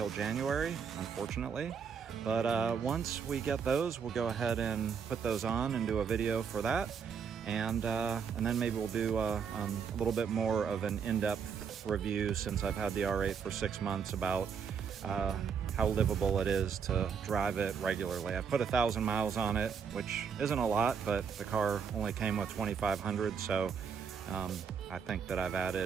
January, unfortunately. But once we get those, we'll go ahead and put those on and do a video for that. And then maybe we'll do a little bit more of an in-depth review, since I've had the R8 for 6 months, about how livable it is to drive it regularly. I put 1,000 miles on it, which isn't a lot, but the car only came with 2,500, so I think that I've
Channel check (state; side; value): quieter; left; 6.7 dB